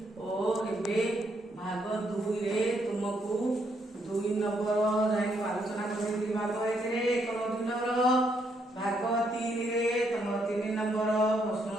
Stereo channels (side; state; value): both; normal; correlation 0.74